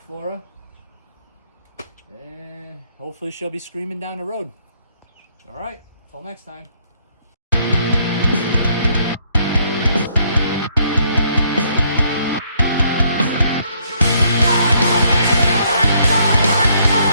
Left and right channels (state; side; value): inverted; both; correlation -0.69